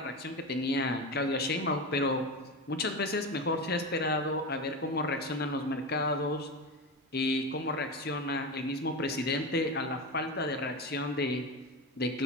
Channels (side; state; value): both; normal; correlation 0.22